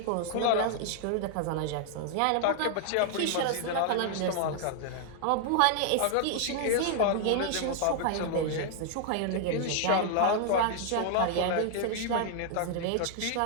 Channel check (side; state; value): both; different; correlation 0.00